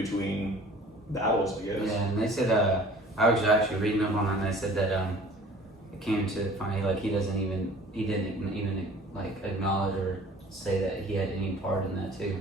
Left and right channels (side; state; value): both; normal; correlation 0.48